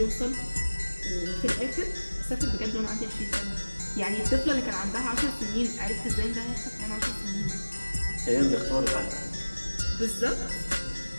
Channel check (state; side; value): inverted; both; correlation -1.00